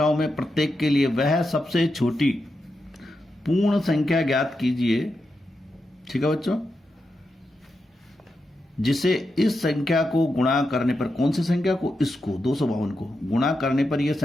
में प्रत्येक के लिए वह सबसे छोटी पूर्ण संख्या ज्ञात कीजिए। ठीक है बच्चों, जिसे इस संख्या को गुणा करने पर, कौन सी संख्या को? इसको 252 को गुणा करने पर यह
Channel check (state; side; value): normal; both; correlation 0.87